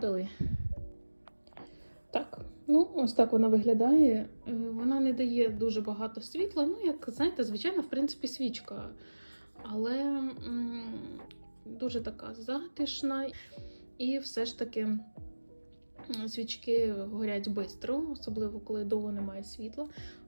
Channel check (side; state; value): both; inverted; correlation -1.00